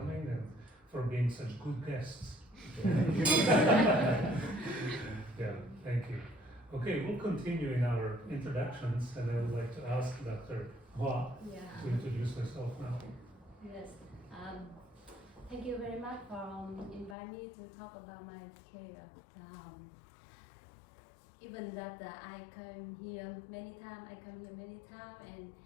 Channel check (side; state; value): right; drops out; at 17.2 s